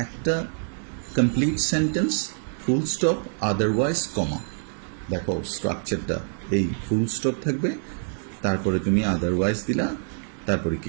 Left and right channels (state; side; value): silent; left; 61 dB below the other